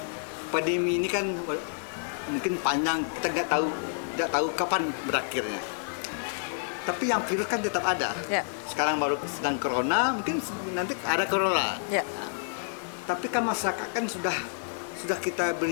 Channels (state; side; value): silent; right; digital silence